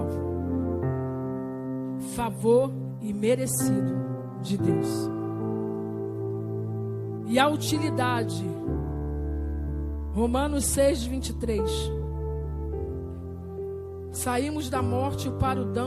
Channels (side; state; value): both; identical; correlation 1.00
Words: Favor imerecido de Deus. E a utilidade, Romanos 6, 23. Saímos da morte para o